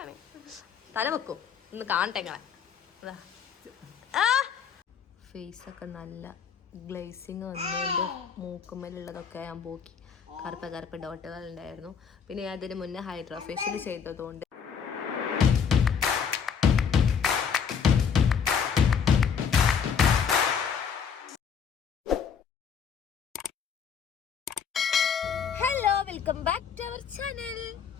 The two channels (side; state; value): right; quieter; 6.8 dB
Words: തല വെക്കും ഒന്ന് കാണട്ടെ ഇങ്ങളെ. ഫേസൊക്കെ നല്ല ഗ്ലേസിങ് വന്നുകൊണ്ട് മൂക്കുമ്മലുള്ളതൊക്കെ ഞാൻ പോക്കി. കറുപ്പ് ഡോട്ടുകൾ ഉണ്ടായിരുന്നു. പിന്നെ ഞാൻ അതിന് മുന്നേ ഹൈഡ്രാ ഫേഷ്യൽ ചെയ്തതുകൊണ്ട് welcome back to our channel.